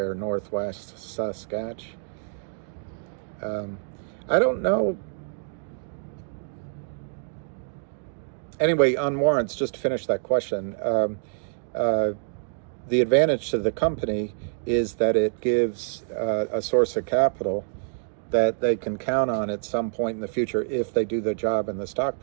Northwest Saskatchewan. I don't know. Anyway, on warrants, just to finish that question, the advantage to the company is that it gives a source of capital that they can count on at some point in the future if they do their job and the stock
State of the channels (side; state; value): left; silent; digital silence